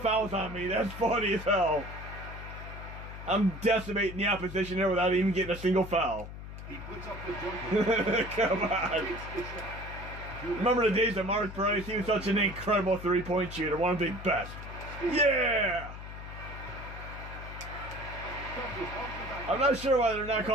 on me. That's funny as hell. I'm decimating the opposition there without even getting a single foul. He puts up the jumper. Come on. Remember the days of Mark Price? He was such an incredible three-point shooter, one of the best. Yeah! I'm not sure why they're not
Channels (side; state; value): left; noise; hum, 11 dB below the sound